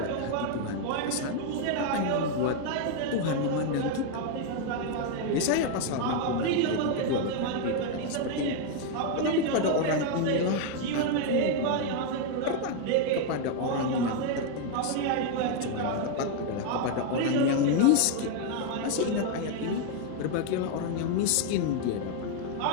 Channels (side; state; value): both; different; correlation 0.00